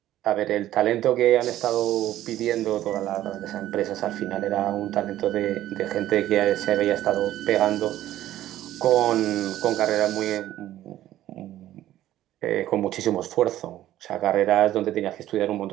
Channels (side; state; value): left; quieter; 13.5 dB